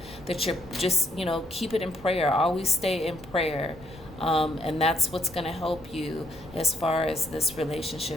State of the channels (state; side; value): noise; left; rumble, 19 dB below the sound